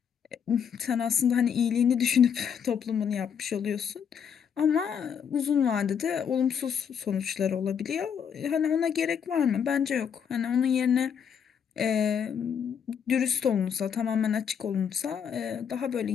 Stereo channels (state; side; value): quieter; right; 7.6 dB